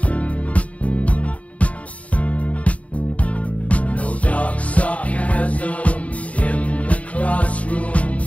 No dark sarcasm in the classroom.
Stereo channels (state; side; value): late; right; 0.067 ms